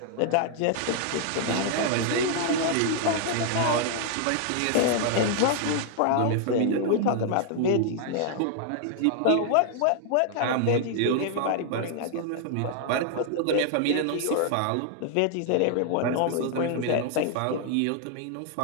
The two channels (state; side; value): different; both; correlation 0.00